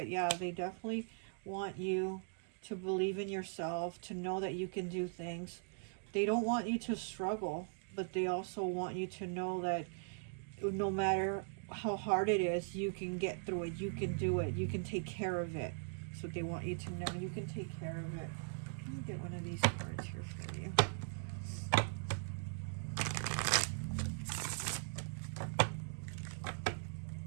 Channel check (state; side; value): silent; left; digital silence